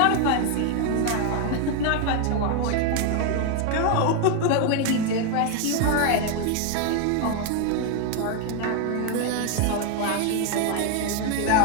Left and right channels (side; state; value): both; different; correlation 0.01